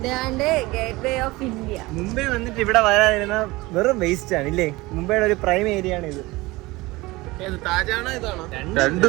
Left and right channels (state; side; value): quieter; left; 21.2 dB